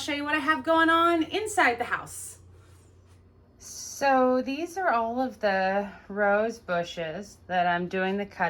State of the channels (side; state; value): both; identical; correlation 1.00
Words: you what I have going on inside the house. So these are all of the rose bushes that I'm doing the